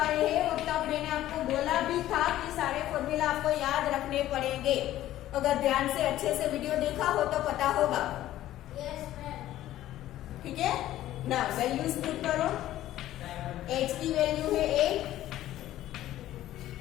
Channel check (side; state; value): right; quieter; 13.8 dB